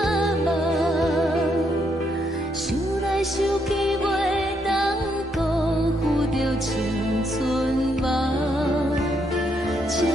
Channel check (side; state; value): both; normal; correlation 0.76